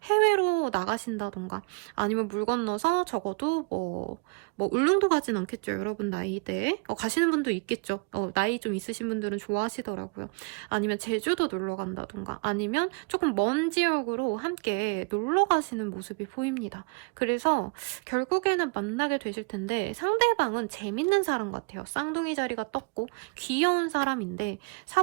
해외로 나가신다던가 아니면 물 건너서 적어도 뭐 울릉도 가진 않겠죠. 여러분 나이대에. 가시는 분도 있겠죠. 나이 좀 있으신 분들은 좋아하시더라고요. 아니면 제주도 놀러 간다던가 아니면 조금 먼 지역으로 함께 놀러 가시는 모습이 보입니다. 그래서 결국에는 만나게 되실 텐데 상대방은 재밌는 사람 같아요. 쌍둥이 자리가 떴고 귀여운 사람인데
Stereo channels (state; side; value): quieter; left; 31.9 dB